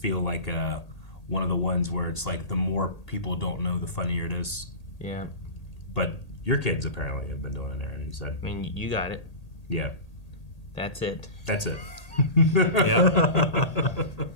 like one of the ones where it's like the more people don't know, the funnier it is. Yeah. But your kids apparently have been doing it, Aaron. You said. I mean, you got it. Yeah. That's it. That's it. Yeah.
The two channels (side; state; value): right; late; 1.8 ms